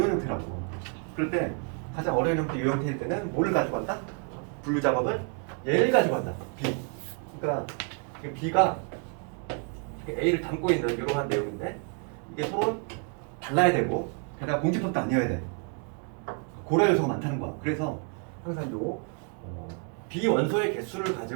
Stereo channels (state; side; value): quieter; left; 39.3 dB